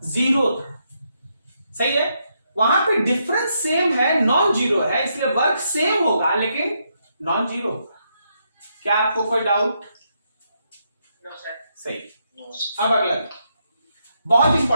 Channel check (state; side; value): inverted; both; correlation -0.79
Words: 0 था। सही है, वहां पे डिफरेंस सेम है, नॉन जीरो है, इसलिए वर्क सेम होगा लेकिन नॉन जीरो। क्या आपको कोई डाउट? No, sir. सही। No, sir. अब अगला बहुत